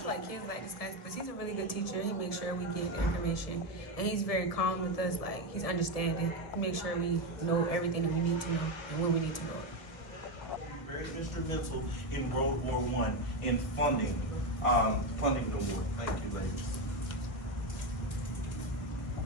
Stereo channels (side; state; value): right; late; 1.4 ms